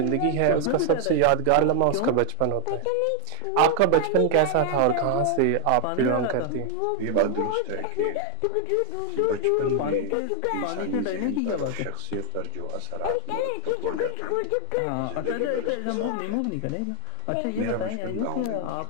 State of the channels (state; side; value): different; both; correlation 0.01